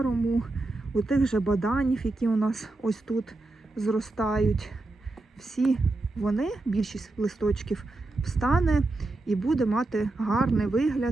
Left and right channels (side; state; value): left; quieter; 3.0 dB